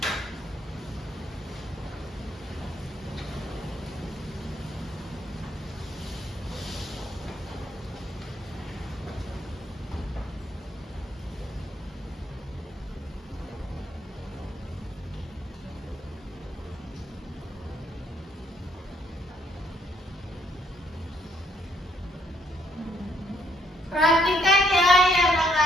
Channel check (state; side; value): normal; both; correlation 0.69